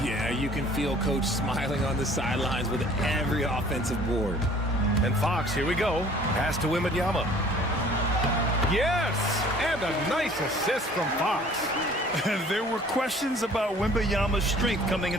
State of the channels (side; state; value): both; normal; correlation 0.52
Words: Yeah, you can feel Coach smiling on the sidelines with every offensive board. And Fox, here we go. Pass to Wembanyama. Yes! And a nice assist from Fox. There were questions about Wembanyama's strength coming